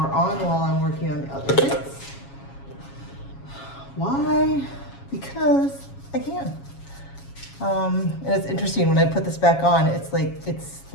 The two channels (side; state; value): right; late; 7.3 ms